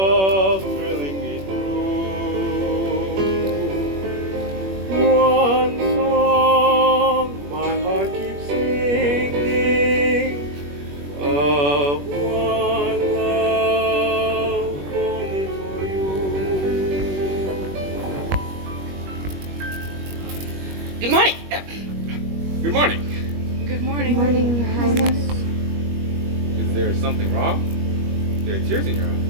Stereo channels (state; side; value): late; left; 21 ms